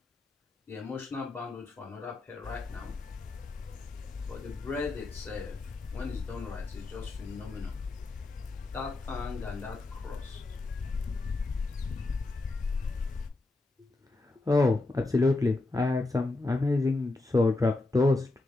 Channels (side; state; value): right; quieter; 3.1 dB